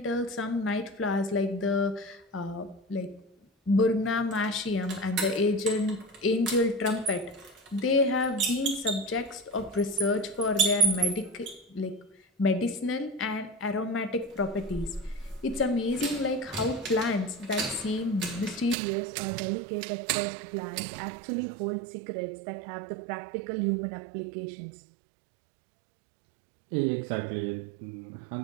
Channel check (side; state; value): left; drops out; at 18.8 s